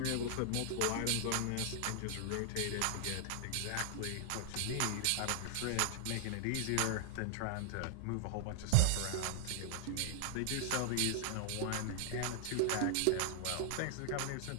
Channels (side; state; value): both; different; correlation 0.00